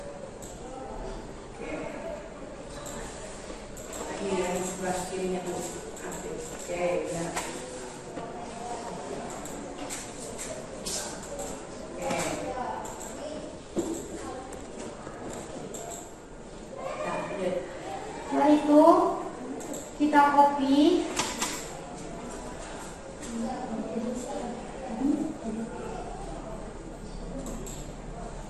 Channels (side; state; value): both; identical; correlation 1.00